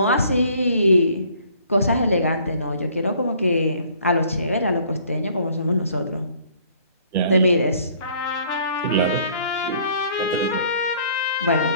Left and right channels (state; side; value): inverted; both; correlation -0.58